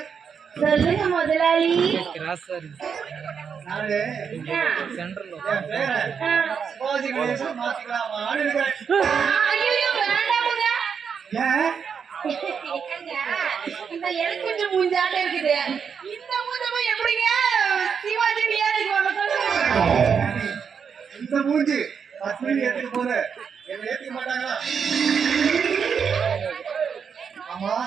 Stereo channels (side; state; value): left; quieter; 6.7 dB